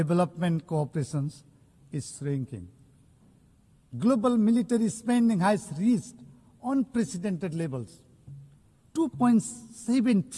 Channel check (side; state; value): both; identical; correlation 1.00